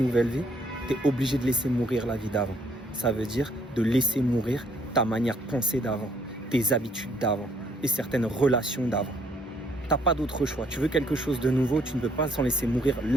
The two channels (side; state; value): both; normal; correlation 0.67